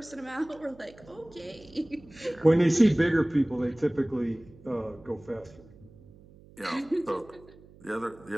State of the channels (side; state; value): right; noise; hum, 23 dB below the sound